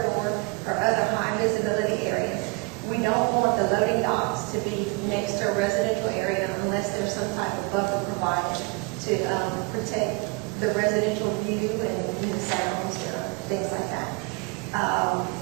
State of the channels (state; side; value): quieter; left; 27.9 dB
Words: or other high visibility areas. We don't want the loading docks to be next to a residential area unless there's some type of buffer provided to protect the residential view and sounds, things like that.